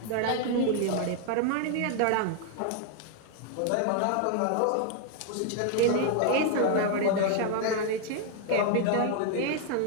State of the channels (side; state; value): both; different; correlation 0.00